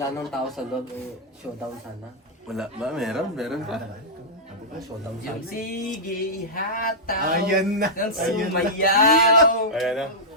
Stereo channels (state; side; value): normal; both; correlation -0.10